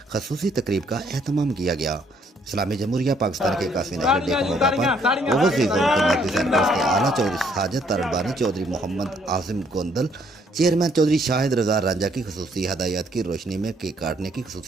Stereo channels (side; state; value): both; normal; correlation 0.67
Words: खसूसी तकरीब का एहतमाम किया गया। इस्लामी जमहूरिया पाकिस्तान के 81वें नेशनल डे के मौका पर ओवरसीज़ कौम के मर्कज़ी सरपरस्त के आला चौधरी साजिद तरबानी, चौधरी मोहम्मद आसिम गोंदल, चेयरमैन चौधरी शाहिद रजा रांझा की खसूसी हदायत की रोशनी में केक काटने की